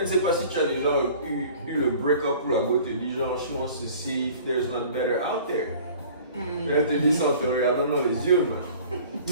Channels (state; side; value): inverted; both; correlation -0.47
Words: ne sais pas si tu as déjà eu le break-up où la go te dit genre, she wants to see if there's not better out there. Elle te dit ça en te regardant dans les yeux, man.